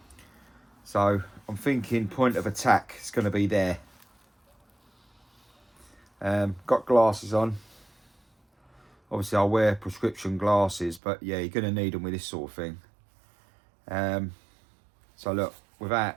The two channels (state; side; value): drops out; left; at 11.0 s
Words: So I'm thinking point of attack is going to be there. Got glasses on. Obviously I'll wear prescription glasses, but yeah, you're going to need them with this sort of thing. So look,